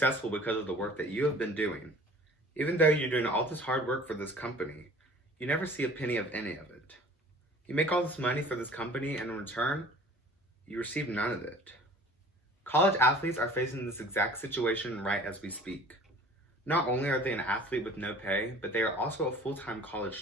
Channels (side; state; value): both; normal; correlation 0.47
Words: because of the work that you have been doing. Even though you're doing all this hard work for this company, you never see a penny of any of it. You make all this money for this company, and in return, you receive none of it. College athletes are facing this exact situation right as we speak. Not only are they an athlete with no pay, but they are also a full-time college